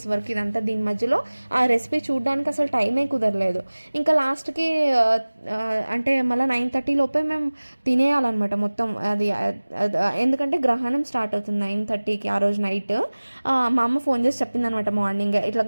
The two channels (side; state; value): both; inverted; correlation -1.00